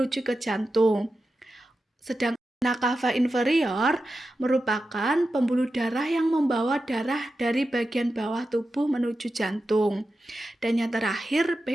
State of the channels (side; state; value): both; normal; correlation 0.91